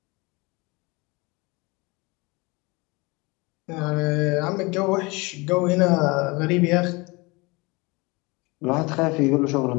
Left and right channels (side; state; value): right; quieter; 25.6 dB